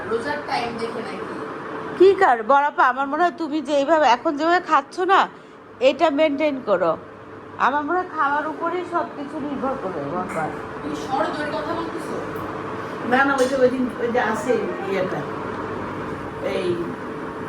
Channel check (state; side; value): identical; both; correlation 1.00